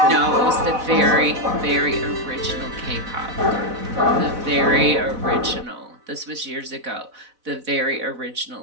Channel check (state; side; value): late; left; 4.0 ms